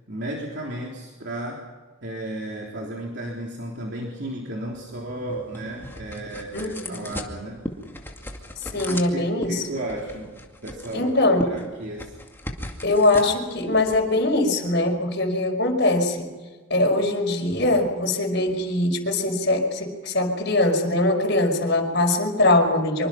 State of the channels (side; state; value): both; normal; correlation -0.06